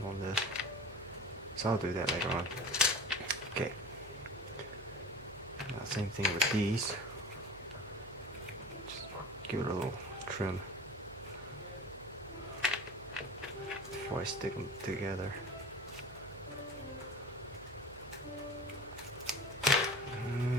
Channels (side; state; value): right; noise; hum, 19 dB below the sound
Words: on this. So I'll do that later on. Okay. Now, same thing with these. Just give it a little trim before I stick them together.